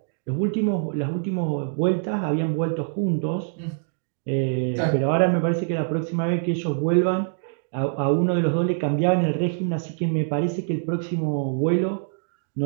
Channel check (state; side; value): silent; left; digital silence